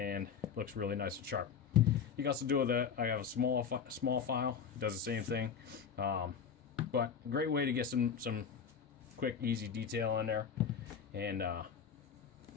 looks really nice and sharp. You can also do with I have a small file. It does the same thing. But a great way to get some quick, easy detail in there. And oh,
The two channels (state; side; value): quieter; right; 6.9 dB